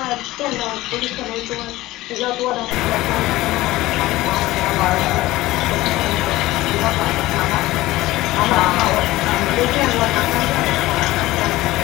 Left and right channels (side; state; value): right; quieter; 17.7 dB